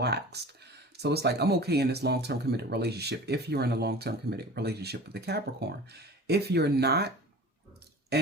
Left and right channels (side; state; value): both; normal; correlation 0.39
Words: So it's like, I'm okay in this long-term committed relationship if you're in a long-term committed relationship with the Capricorn. If you're not,